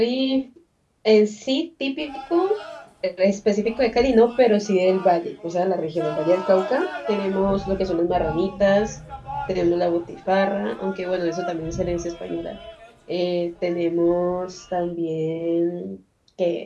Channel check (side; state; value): both; identical; correlation 1.00